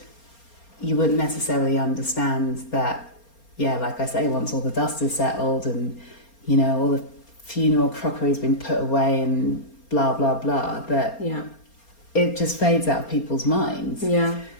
you wouldn't necessarily understand that, like I say, once all the dust is settled and, you know, all the funeral crockery's been put away and blah, blah, blah, that it just fades out of people's minds. Yeah.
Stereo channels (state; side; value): late; right; 4.3 ms